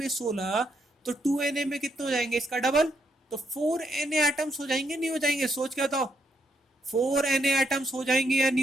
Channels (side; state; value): both; normal; correlation 0.77